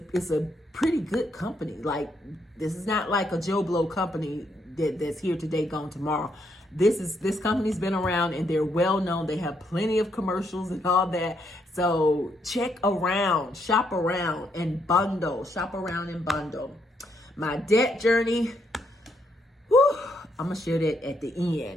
pretty good company. Like, this is not like a Joe Blow company that's here today, gone tomorrow. This company's been around, and they're well known. They have plenty of commercials and all that. So check around, shop around and bundle. Shop around and bundle. My debt journey, I'm going to share that at the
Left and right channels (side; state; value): both; normal; correlation 0.76